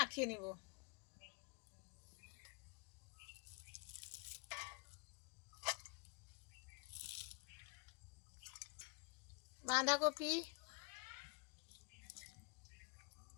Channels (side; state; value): right; quieter; 32.8 dB